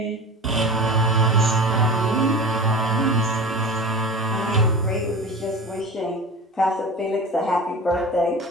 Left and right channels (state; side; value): normal; both; correlation 0.34